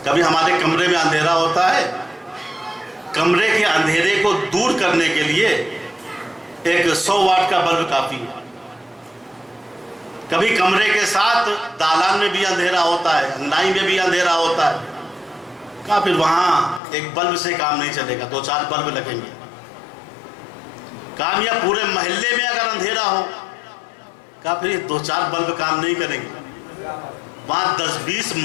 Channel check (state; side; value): drops out; right; at 16.8 s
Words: کبھی ہمارے کمرے میں اندھیرا ہوتا ہے، کمرے کے اندھیرے کو دور کرنے کے لیے ایک 100 واٹ کا بلب کافی ہے۔ کبھی کمرے کے ساتھ دالان میں بھی اندھیرا ہوتا ہے، انگنائی میں بھی اندھیرا ہوتا ہے، کہا پھر وہاں ایک بلب سے کام نہیں چلے گا، 2-4 بلب لگیں گے۔ کام یا پورے محلے میں اگر اندھیرا ہو، کہا پھر یہ 2-4 بلب کام نہیں کریں گے، وہاں 10-20